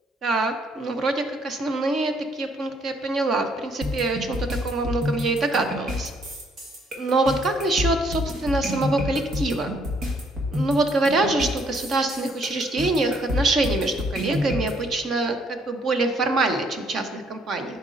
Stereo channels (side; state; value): both; normal; correlation 0.67